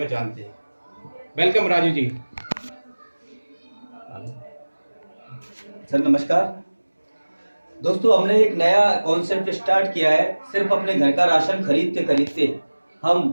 जानते हैं। वेलकम राजू जी। सर नमस्कार। दोस्तों, हमने एक नया कॉन्सेप्ट स्टार्ट किया है। सिर्फ अपने घर का राशन खरीदते खरीदते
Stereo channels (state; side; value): inverted; both; correlation -1.00